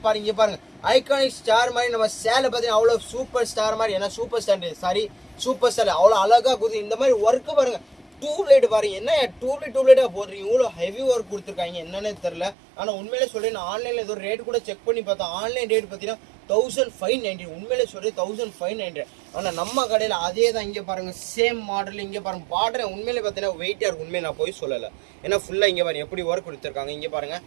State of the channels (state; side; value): drops out; left; at 12.6 s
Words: பாருங்க. பாருங்க, ஐகானிக் ஸ்டார் மாதிரி நம்ம சேலை பார்த்தீங்கன்னா அவ்வளோ சூப்பர் ஸ்டார் மாதிரி. ஏன்னா சூப்பர் ஸ்டார் சூப்பர் ஸ்டார் அவ்வளோ அழகாக கொடுத்து இந்த மாதிரி ஒர்க்கு பாருங்க. டியூப்லைட் பாருங்க, என்ன டியூப்லைட்டாக போடுறீங்க, இவ்வளோ ஹெவி ஒர்க் கொடுத்துருக்காங்க என்னன்னே தெரில. ஆனால் உண்மையிலே சொல்கிறேன், நான் ஆன்லைனில் ஏதோ ரேட் கூட செக் பண்ணி பார்த்தேன். ஆன்லைன் ரேட் பார்த்தீங்கன்னா 1590. உண்மையிலே சொல்கிறேன் 1590. ஆனால் நம்ம கடையில் அதே தான். இங்கே பாருங்கள், சேம் மாடல். இங்கே பாருங்கள் பார்டர் உண்மையிலே பார்த்தீங்கன்னா வெயிட்டாக இருக்கும். உண்மையை நான் போய் சொல்லலை. ஏன்னா ஃபுல்லாக இங்கே பாருங்கள் எப்படி ஒர்க் கொடுத்துருக்காங்க. இங்கே பாருங்கள்